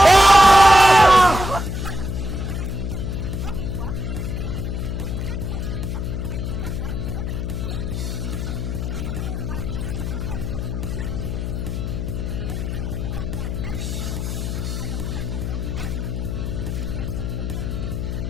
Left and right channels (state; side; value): noise; left; hum, 3 dB below the sound